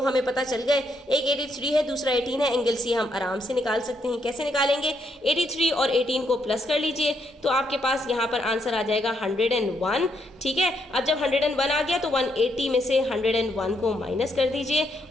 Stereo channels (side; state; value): both; normal; correlation 0.76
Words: हमें पता चल गए, एक 83 है दूसरा 18 है। एंगल सी हम आराम से निकाल सकते हैं। कैसे निकालेंगे, 83 और 18 को प्लस कर लीजिए तो आपके पास यहाँ पर आंसर आ जाएगा 101। ठीक है, अब जब 101 आ गया तो 180 में से 101 को माइनस कर दीजिए